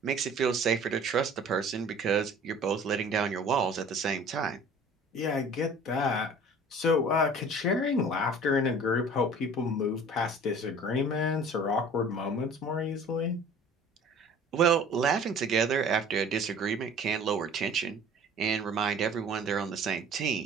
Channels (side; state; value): both; normal; correlation 0.47